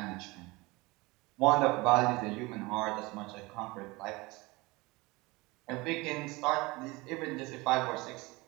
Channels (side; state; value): left; quieter; 23.3 dB